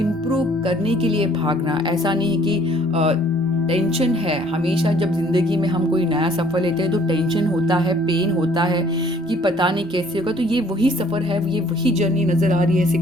करने के लिए भागना। ऐसा नहीं है कि टेंशन है। हमेशा जब ज़िंदगी में हम कोई नया सफ़र लेते हैं तो टेंशन होता है, पेन होता है कि पता नहीं कैसे होगा। तो ये वही सफ़र है, ये वही जर्नी नज़र आ रही है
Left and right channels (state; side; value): normal; both; correlation 0.58